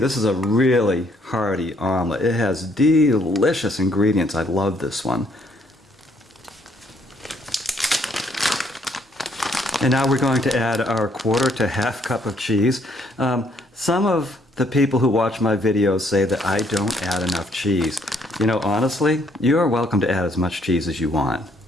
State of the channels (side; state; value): both; normal; correlation 0.68